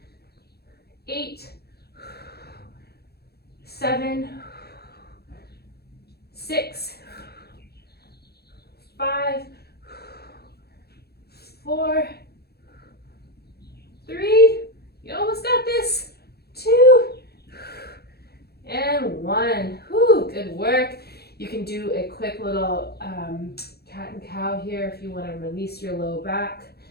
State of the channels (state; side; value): late; right; 0.46 ms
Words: 8, 7, 6, 5, 4, 3, you almost got this, 2, and 1. Whew, good work. You can do a quick little cat and cow here if you want to release your low back.